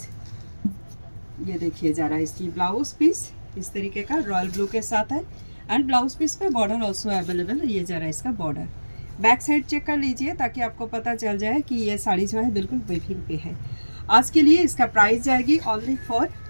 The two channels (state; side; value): inverted; both; correlation -1.00